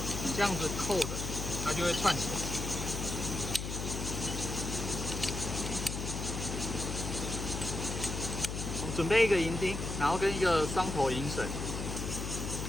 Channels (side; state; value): left; noise; hum, 4 dB below the sound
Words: 这样子扣的，它就会串起来。准备一个银钉，然后跟一个双头银绳。